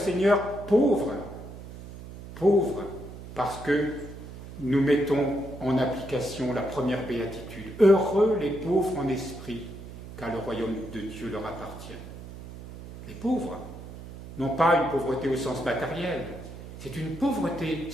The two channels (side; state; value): right; noise; hum, 13 dB below the sound